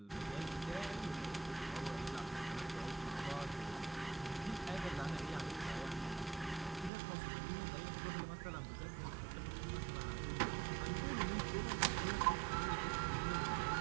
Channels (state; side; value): drops out; left; at 6.9 s